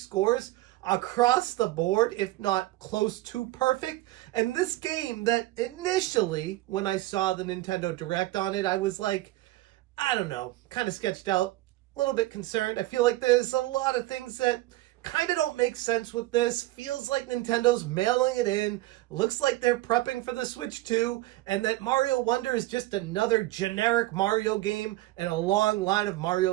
across the board, if not close to perfect. And this game that initially, when I saw the Nintendo Direct on it, I was like, I don't know, kind of sketched out, a little bit concerned. I feel like there's a lot of things that kind of don't make sense with this. Feels like Nintendo's mailing it in. Looks like they're prepping for the Switch 2, and that Mario Wonder is just another generic Mario game and a long line of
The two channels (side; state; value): left; quieter; 17.8 dB